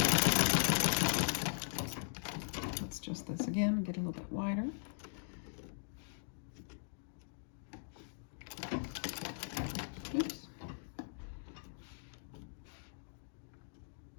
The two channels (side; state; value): right; silent; digital silence